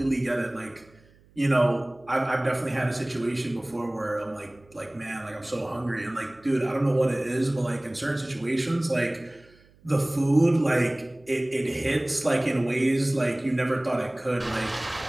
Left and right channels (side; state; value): right; noise; hum, 29 dB below the sound